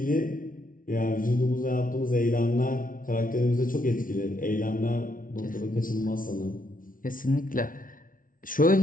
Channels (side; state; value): right; late; 0.39 ms